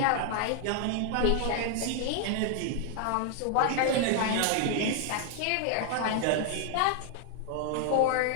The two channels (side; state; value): both; different; correlation 0.00